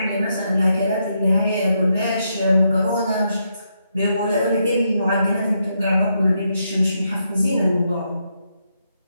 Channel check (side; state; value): both; inverted; correlation -0.80